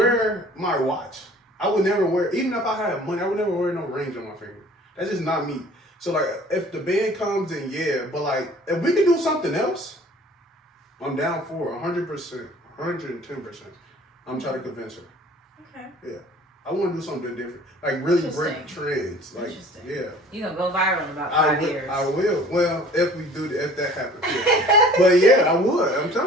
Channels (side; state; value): both; normal; correlation 0.49